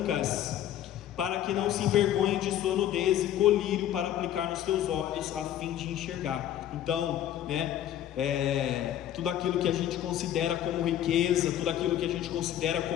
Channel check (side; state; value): right; quieter; 11.4 dB